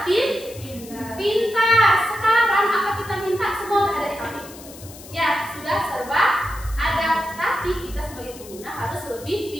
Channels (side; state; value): left; noise; hiss, 17 dB below the sound